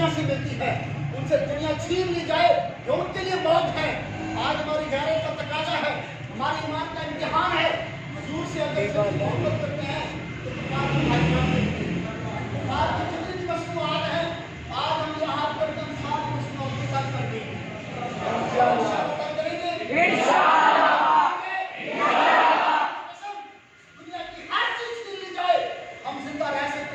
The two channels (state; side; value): identical; both; correlation 1.00